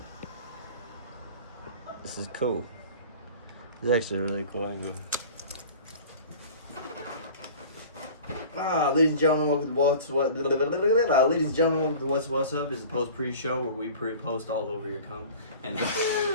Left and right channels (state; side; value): inverted; both; correlation -0.42